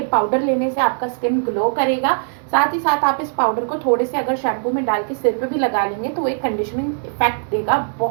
पाउडर लेने से आपका स्किन ग्लो करेगा। साथ ही साथ आप इस पाउडर को थोड़े से अगर शैम्पू में डाल के सिर पे भी लगा लेंगे तो एक कंडीशनिंग इफेक्ट देगा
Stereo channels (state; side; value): silent; left; digital silence